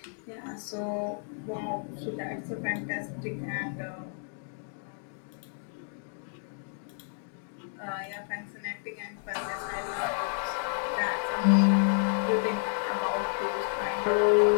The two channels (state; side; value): silent; right; 57 dB below the other